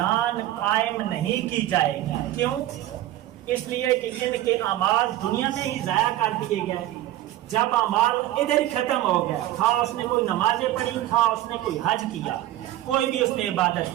قائم نہیں کی جائے گی۔ کیوں؟ اس لیے کہ ان کے اعمال دنیا میں ہی ضائع کر دیے گئے۔ جب اعمال ادھر ہی ختم ہو گیا، تھا اس نے کوئی نمازیں پڑھی، تھا اس نے کوئی حج کیا، کوئی بھی اس نے عبادت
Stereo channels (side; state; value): left; quieter; 14.5 dB